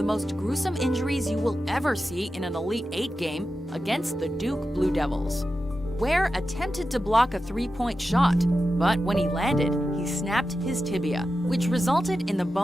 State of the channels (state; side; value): normal; both; correlation 0.91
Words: most gruesome injuries you will ever see in an Elite 8 game against the Duke Blue Devils. Ware attempted to block a three-point shot, but when he landed, he snapped his tibia, which resulted in the